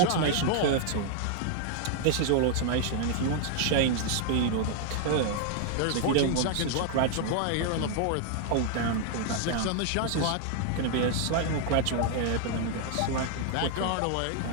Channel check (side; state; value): both; different; correlation 0.00